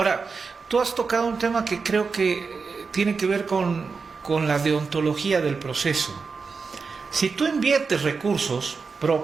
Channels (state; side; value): quieter; left; 4.9 dB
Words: tú has tocado un tema que creo que tiene que ver con la deontología del proceso. Si tú inviertes recursos